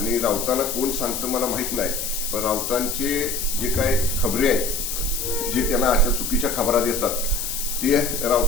राऊतांना कोण सांगतं मला माहित नाही, पण राऊतांचे जे काय खबरे आहेत, जे त्यांना अशा चुकीच्या खबरा देतात ते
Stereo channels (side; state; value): left; noise; hiss, 3 dB below the sound